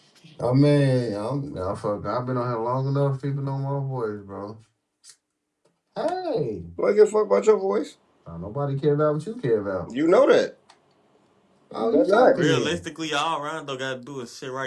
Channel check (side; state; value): both; identical; correlation 1.00